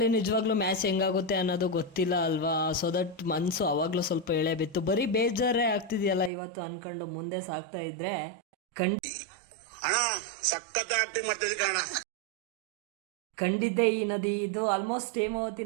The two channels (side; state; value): left; drops out; at 6.3 s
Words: ನಿಜವಾಗ್ಲೂ ಮ್ಯಾಚ್ ಹೆಂಗಾಗುತ್ತೆ ಅನ್ನೋದು ಗೊತ್ತಿಲ್ಲ ಅಲ್ವಾ. ಸೊ ದಟ್ ಮನ್ಸು ಅವಾಗ್ಲೂ ಸ್ವಲ್ಪ ಎಳೆ ಬಿತ್ತು. ಬರೀ ಬೇಜಾರೇ ಆಗ್ತಿದೆಯಲ್ಲ ಇವತ್ತು ಅನ್ಕೊಂಡು ಮುಂದೆ ಸಾಕ್ತಾ ಇದ್ರೆ ಕಂಡಿದ್ದೆ ಈ ನದಿ. ಇದು ಆಲ್ಮೋಸ್ಟ್ ಹೇಮಾವತಿ